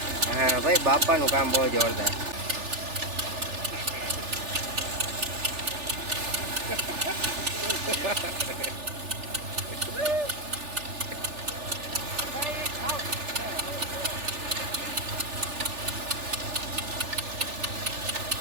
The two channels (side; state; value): left; late; 3.4 ms